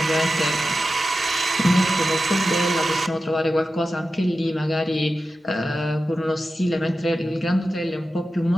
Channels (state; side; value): normal; both; correlation 0.92